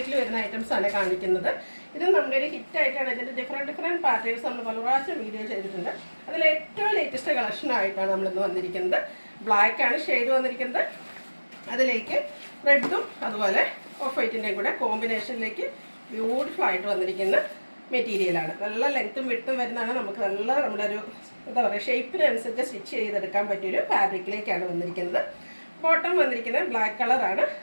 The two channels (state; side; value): inverted; both; correlation -1.00